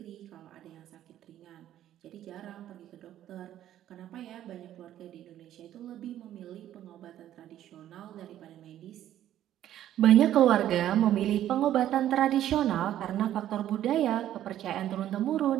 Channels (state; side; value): quieter; left; 12.0 dB